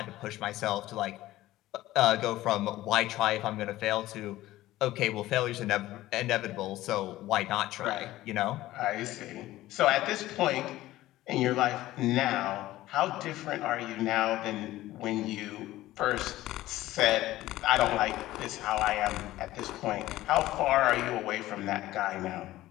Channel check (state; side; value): quieter; right; 16.0 dB